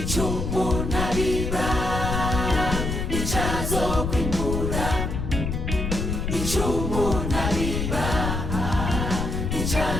umuntu abiba nicazo kwimbura ico umuntu abiba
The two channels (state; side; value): noise; left; rumble, 2 dB below the sound